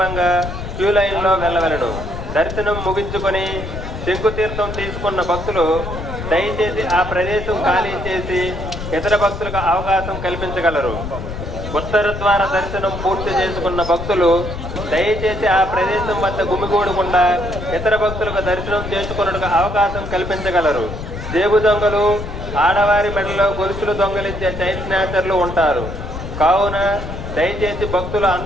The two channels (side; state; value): left; noise; rumble, 8 dB below the sound